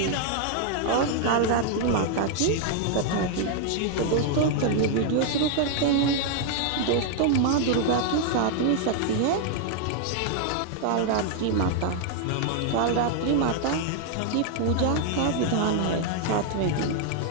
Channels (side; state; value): both; different; correlation 0.00